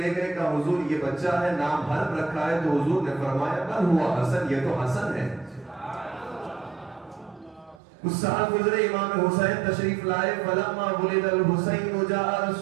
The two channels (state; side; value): drops out; left; at 7.8 s